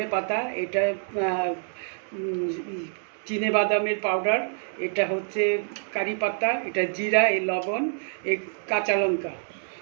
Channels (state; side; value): silent; left; digital silence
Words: পাতা, এটা চিনে বাদামের পাউডার, এটা হচ্ছে কারি পাতা, এটা জিরা, এই লবণ, এই কাঁচা লঙ্কা।